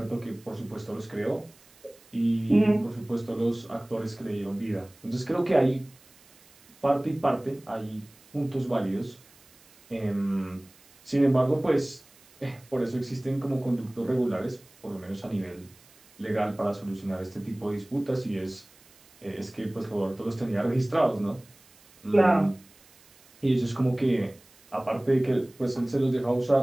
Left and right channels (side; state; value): right; noise; hiss, 28 dB below the sound